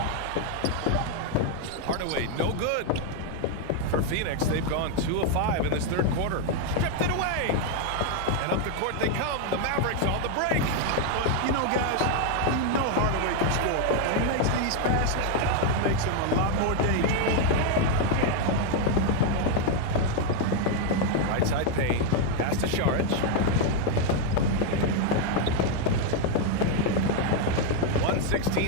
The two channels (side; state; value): both; different; correlation 0.01